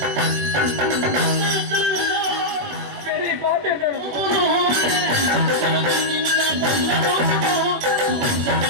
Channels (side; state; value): left; late; 21 ms